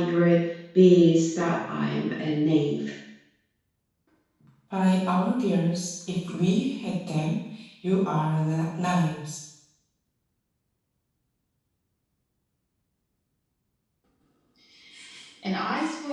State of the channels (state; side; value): identical; both; correlation 1.00